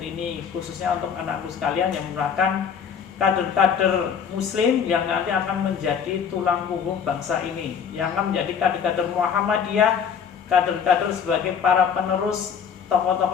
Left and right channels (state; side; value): quieter; right; 7.2 dB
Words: khususnya untuk anakku sekalian yang merupakan kader-kader muslim yang nanti akan menjadi tulang punggung bangsa ini, yang akan menjadi kader-kader Muhammadiyah, kader-kader sebagai para penerus